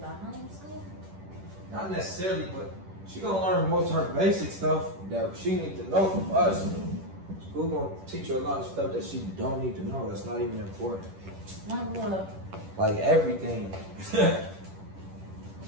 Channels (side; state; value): left; late; 10 ms